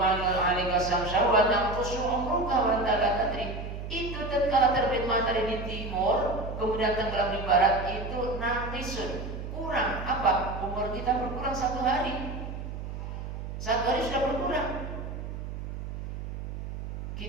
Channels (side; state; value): right; noise; hum, 7 dB below the sound